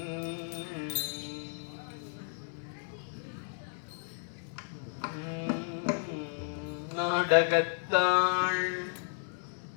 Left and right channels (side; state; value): right; silent; digital silence